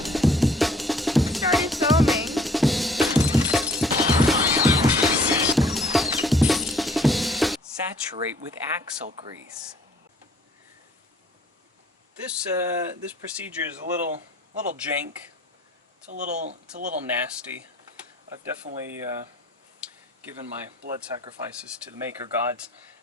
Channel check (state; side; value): normal; both; correlation 0.58